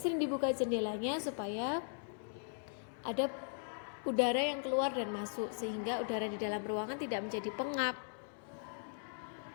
dibuka jendelanya supaya ada udara yang keluar dan masuk, sehingga udara di dalam ruangan tidak menjadi pengap.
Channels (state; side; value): silent; right; digital silence